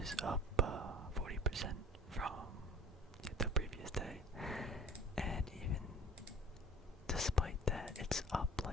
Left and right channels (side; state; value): both; normal; correlation 0.45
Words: is up 40% from the previous day, and even despite that, it's up